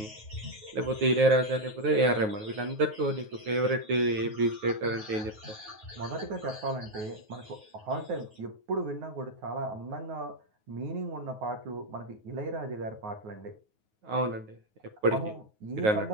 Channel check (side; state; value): left; late; 9.4 ms